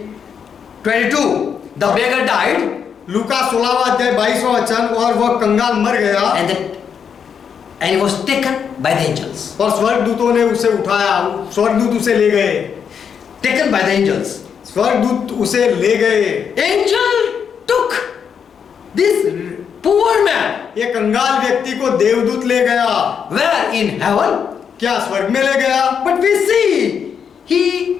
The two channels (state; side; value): quieter; right; 7.2 dB